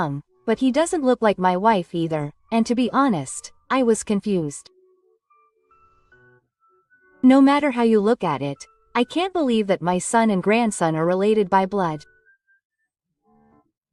but he doesn't look like my wife either, and to be honest, I was confused. No matter how you look at it, I can't believe that my son and grandson are related by blood.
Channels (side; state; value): both; identical; correlation 1.00